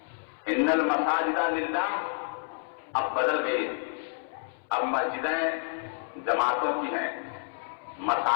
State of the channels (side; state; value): right; silent; 58 dB below the other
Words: ان المساجد للہ اب بدل گئی ہیں. اب مسجدیں جماعتوں کی ہیں،